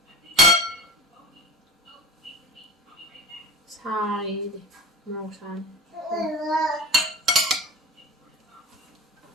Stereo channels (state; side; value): normal; both; correlation 0.35